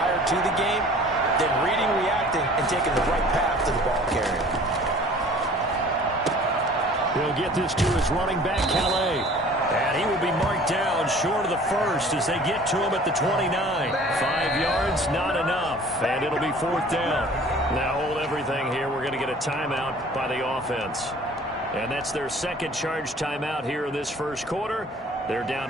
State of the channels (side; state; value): both; normal; correlation 0.49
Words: to the game, then reading, reacting, and taking the right path to the ball carrier. He'll get this to his running back, Calais. And he will be marked down short of the first as they get to him at the 29. 5 yards, not enough. And it'll be fourth down. Now hold everything here. We're going to get a timeout by the offense. And that's their second charge timeout here in this first quarter. They're down